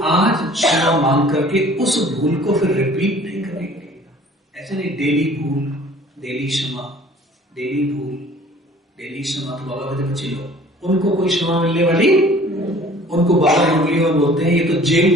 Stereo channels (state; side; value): normal; both; correlation 0.51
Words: आज क्षमा मांग करके उस भूल को फिर रिपीट नहीं करेंगे। ऐसे नहीं डेली भूल, डेली क्षमा, डेली भूल, डेली क्षमा। तो बाबा कहते बच्चे लोग उनको कोई क्षमा मिलने वाली, उनको बाबा उंगली में बोलते हैं ये तो